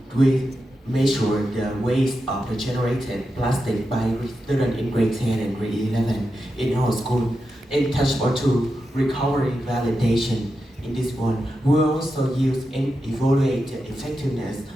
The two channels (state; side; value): normal; both; correlation 0.89